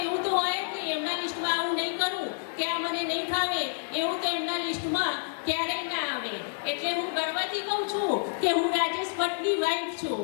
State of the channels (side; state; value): right; silent; 59 dB below the other